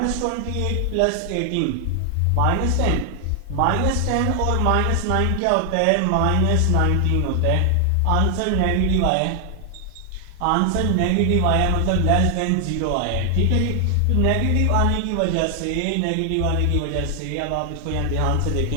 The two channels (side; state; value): both; different; correlation 0.00